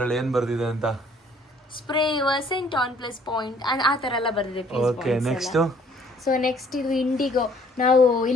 ಏನ್ ಬರ್ದಿದೆ ಅಂತ. Spray scent on plus point ಆ ತರ ಎಲ್ಲ ಬರ್ದಿದೆ. Okay, next. ಸೊ ನೆಕ್ಸ್ಟ್ ಇದು ಇಂಡಿಗೋ. ನಾವು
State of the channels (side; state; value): both; normal; correlation 0.60